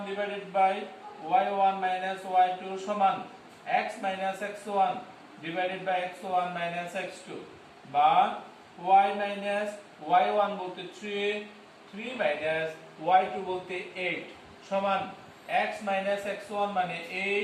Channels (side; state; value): both; identical; correlation 1.00